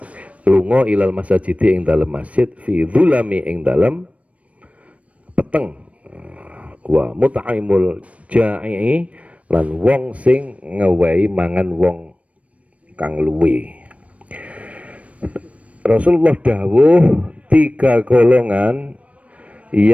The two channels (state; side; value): late; left; 0.065 ms